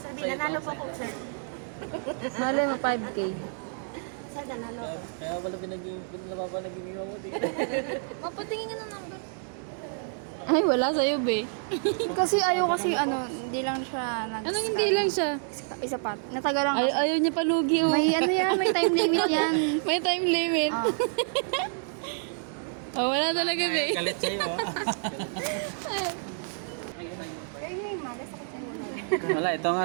Nanalo po ko, sir. Malay mo 5K. Sir, nanalo ko. Kaya pala pinag-iwa mo dito. Mapatingin nga ng number. Ay, wala sa'yo, be. Kasi ayaw kasi hindi lang siya Anong hindi lang siya? Isa pa. Nataga lang kasi. Ayaw niya palugi, oh. May may time limit yan. May time limit. Ah. Oh, wala talaga, be. Galit sa'yo ah. Kaya nga yung malas ako sa'yo. Wala, ito nga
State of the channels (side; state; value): left; silent; digital silence